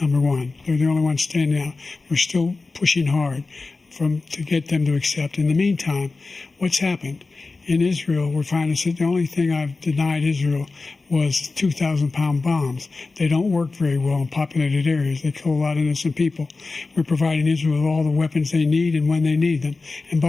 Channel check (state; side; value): quieter; right; 3.7 dB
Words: Number one, they're the only ones standing out. We're still pushing hard to get them to accept. In the meantime, what's happened? In Israel, we're finding that the only thing I've denied Israel was 2,000-pound bombs. They don't work very well in populated areas. They kill a lot of innocent people. We're providing Israel with all the weapons they need and when they need them. And